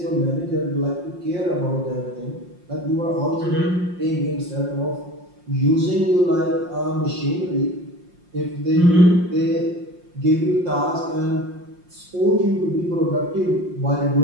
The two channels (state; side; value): late; left; 5.6 ms